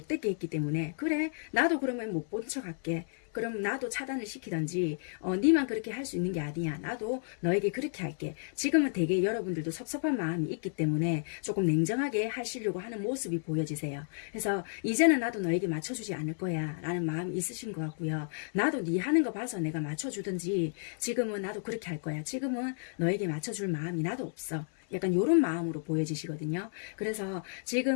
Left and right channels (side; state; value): right; silent; 56 dB below the other